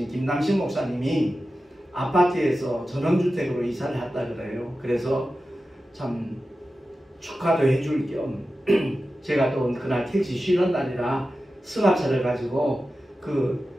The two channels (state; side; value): normal; both; correlation 0.93